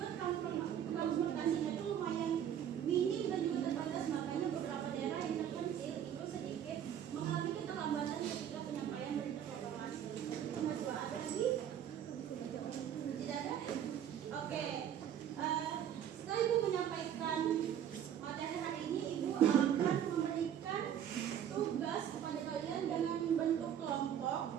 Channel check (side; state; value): left; quieter; 9.7 dB